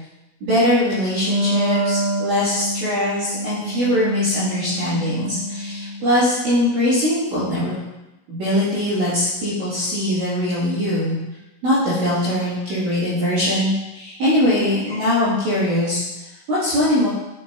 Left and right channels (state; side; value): late; left; 16 ms